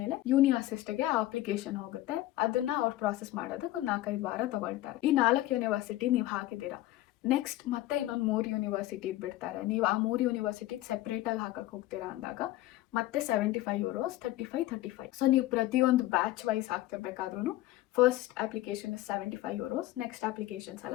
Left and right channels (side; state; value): right; quieter; 16.0 dB